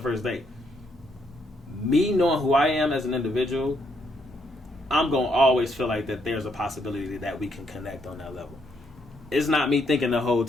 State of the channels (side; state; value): both; normal; correlation 0.74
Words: first date, me knowing who I am as an individual, I'm gonna always feel like that there's a possibility that we can connect on that level. It's not me thinking the whole